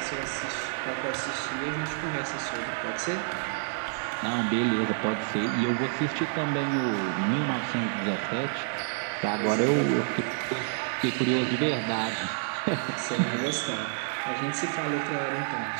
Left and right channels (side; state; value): left; silent; 59 dB below the other